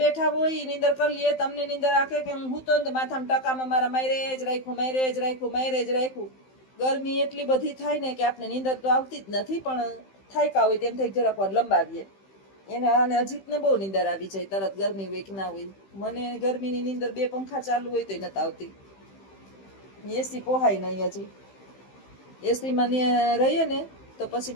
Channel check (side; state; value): right; late; 15 ms